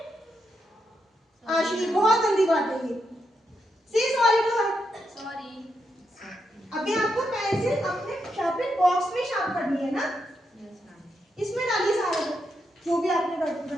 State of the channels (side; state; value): both; normal; correlation 0.82